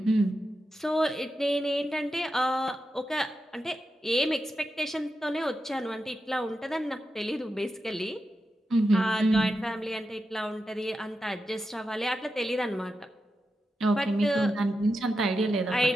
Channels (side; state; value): both; normal; correlation 0.89